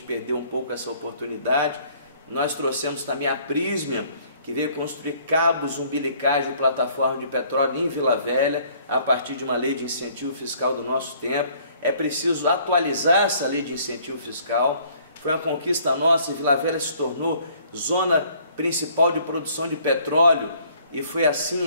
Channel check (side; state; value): both; inverted; correlation -0.59